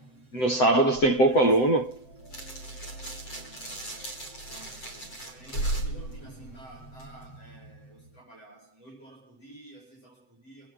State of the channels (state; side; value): late; right; 7.8 ms